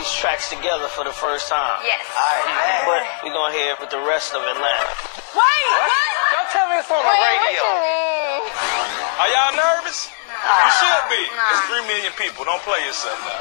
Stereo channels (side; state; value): right; silent; 59 dB below the other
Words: tracks together for the first time. Yes. Alright, but we gonna hear it with the rest of Atlanta. Wait! Don't tell me it's on the radio. Are y'all nervous? You should be. It's 3 million people. Don't play yourself.